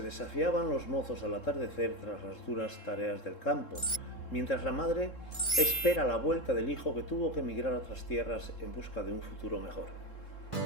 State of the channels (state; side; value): late; right; 3.7 ms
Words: los mozos al atardecer tras las duras tareas del campo, mientras la madre espera la vuelta del hijo que tuvo que emigrar a otras tierras en busca de un futuro mejor.